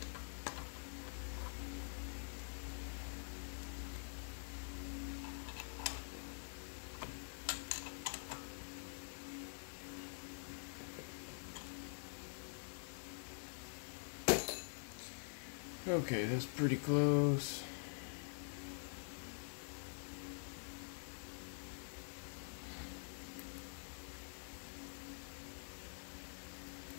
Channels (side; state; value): right; silent; digital silence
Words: Okay, that's pretty close.